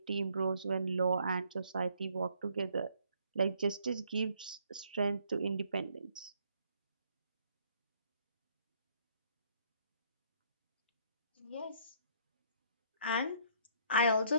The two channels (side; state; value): both; inverted; correlation -0.65